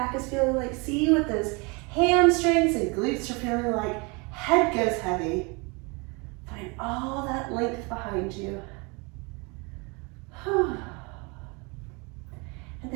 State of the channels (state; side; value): quieter; left; 29.6 dB